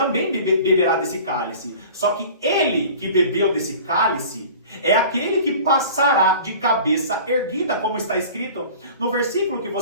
beberá desse cálice. Só que ele que bebeu desse cálice é aquele que passará de cabeça erguida, como está escrito no versículo que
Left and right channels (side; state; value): both; inverted; correlation -0.42